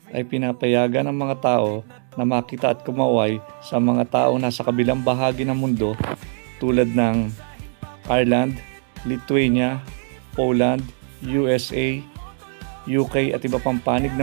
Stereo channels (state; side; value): silent; left; digital silence